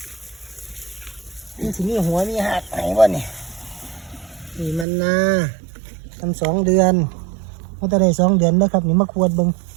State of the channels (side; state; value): left; drops out; at 4.9 s